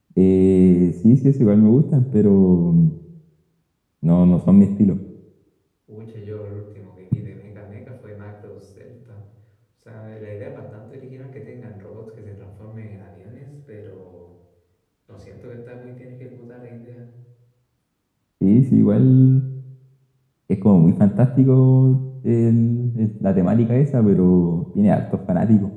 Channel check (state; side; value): identical; both; correlation 1.00